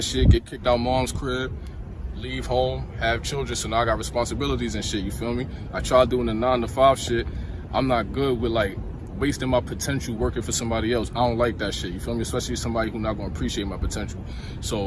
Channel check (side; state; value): both; identical; correlation 1.00